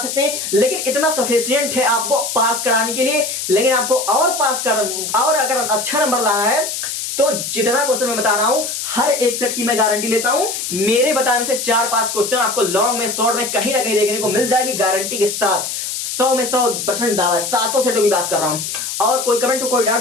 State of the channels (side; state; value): left; noise; hiss, 4 dB below the sound